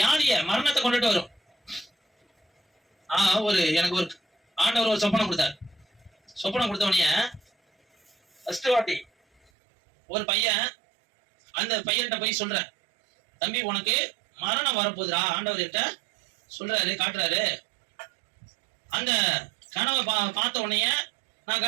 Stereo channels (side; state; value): left; drops out; at 9.5 s